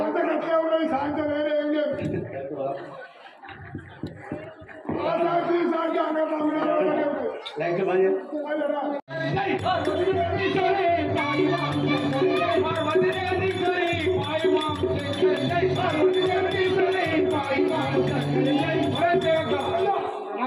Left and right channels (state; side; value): identical; both; correlation 1.00